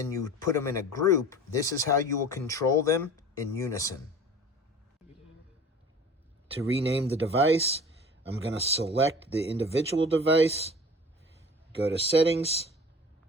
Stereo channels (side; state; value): both; normal; correlation 0.41